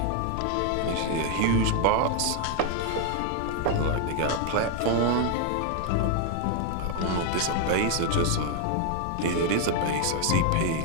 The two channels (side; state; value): both; different; correlation 0.00